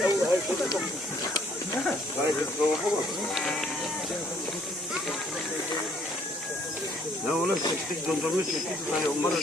Ne ola çektik dondurma çektik hani onlara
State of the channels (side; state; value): both; normal; correlation 0.63